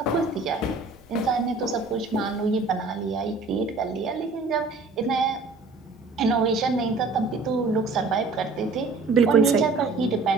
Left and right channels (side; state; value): left; quieter; 3.8 dB